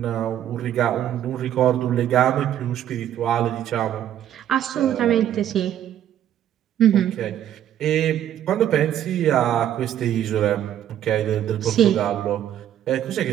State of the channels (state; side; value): quieter; left; 11.1 dB